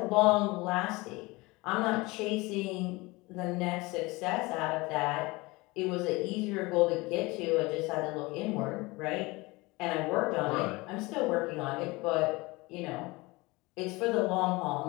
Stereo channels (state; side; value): quieter; right; 23.1 dB